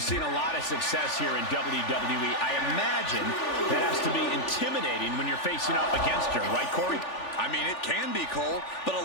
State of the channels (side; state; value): right; late; 3.4 ms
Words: seen a lot of success here in WWE. I imagine that has to be intimidating when you're facing up against her, right, Corey? I mean, it can be, Cole, but